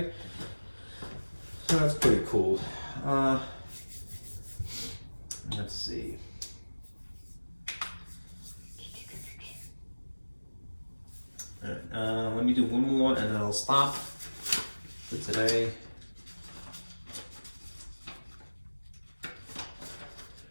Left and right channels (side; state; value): both; inverted; correlation -1.00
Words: so that's pretty cool. Let's see. All right, let me do one more, and then I'll stop for today.